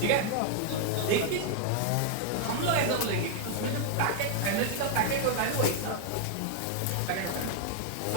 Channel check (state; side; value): different; both; correlation 0.00